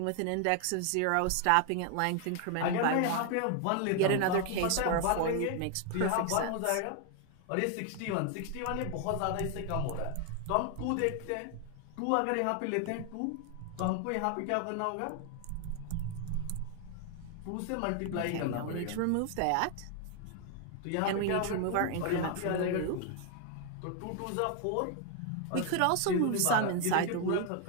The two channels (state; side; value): different; both; correlation 0.00